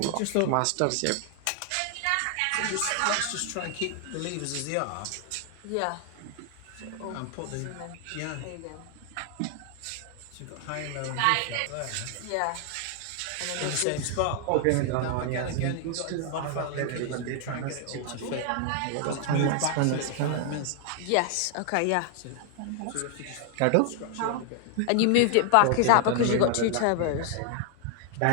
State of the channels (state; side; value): different; both; correlation 0.00